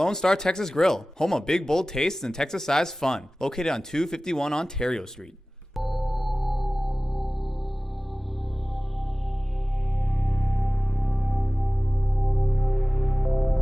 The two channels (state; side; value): normal; both; correlation 0.98